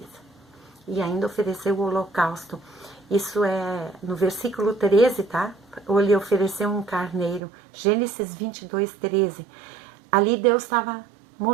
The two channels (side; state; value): left; drops out; at 7.4 s